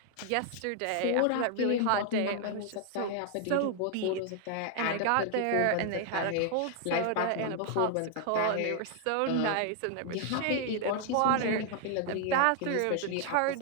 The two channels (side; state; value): both; different; correlation 0.00